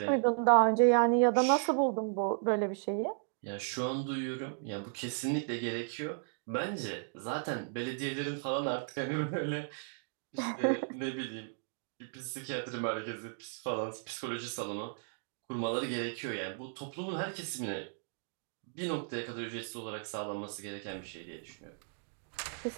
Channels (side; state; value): left; silent; digital silence